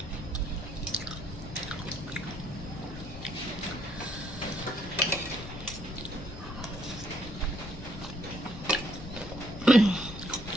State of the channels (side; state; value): left; noise; rumble, 12 dB below the sound